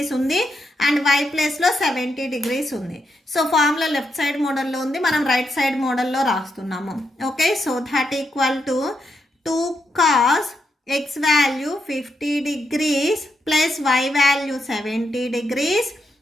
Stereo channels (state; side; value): normal; both; correlation 0.83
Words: ఉంది అండ్ వై ప్లస్లో 70 degrees ఉంది. సో ఫార్ములా లెఫ్ట్ సైడ్ మోడల్లో ఉంది, మనం రైట్ సైడ్ మోడల్లో రాస్తున్నాము. Okay, so that equal to 2 cos x value 50 degrees plus y value 70 degrees